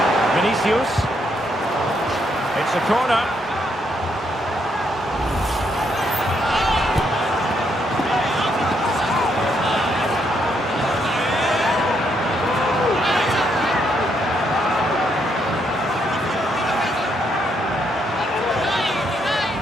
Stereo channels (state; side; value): normal; both; correlation 0.75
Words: Vinicius. It's a corner.